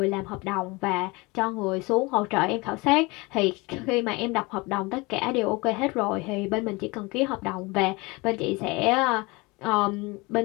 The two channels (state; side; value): quieter; right; 24.9 dB